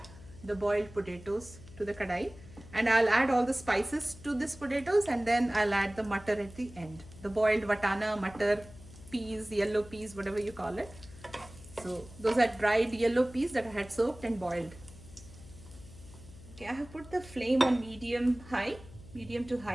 the boiled potatoes to the kadai, and I'll add all the spices to this potatoes, and then I'll add the mutter at the end. The boiled vatana, mutter, peas, yellow peas, whatever you call it. So those are dried yellow peas that I had soaked and boiled. Okay, I have put the flame on medium to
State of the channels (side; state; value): left; noise; hum, 19 dB below the sound